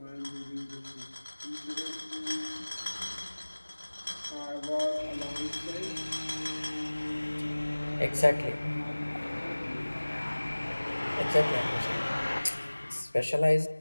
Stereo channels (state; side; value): inverted; both; correlation -1.00